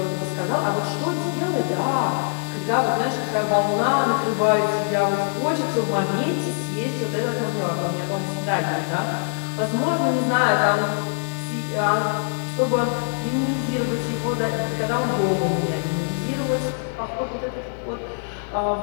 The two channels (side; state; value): right; silent; digital silence